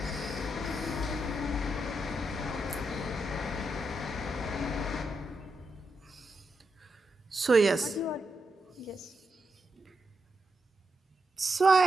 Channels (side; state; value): both; normal; correlation 0.84